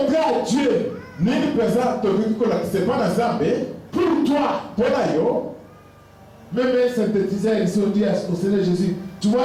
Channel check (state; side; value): identical; both; correlation 1.00